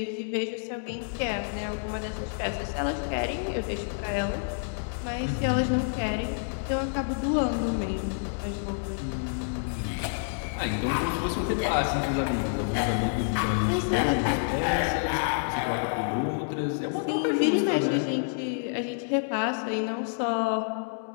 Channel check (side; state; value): right; silent; digital silence